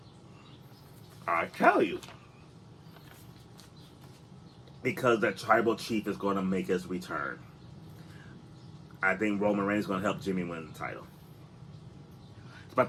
I'll tell you. Because the tribal chief is going to make his return. I think Roman Reigns is going to help Jimmy win the title.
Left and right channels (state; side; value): identical; both; correlation 1.00